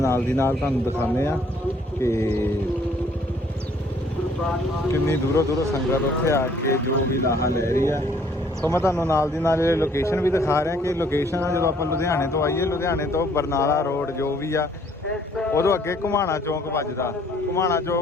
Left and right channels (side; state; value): both; normal; correlation 0.62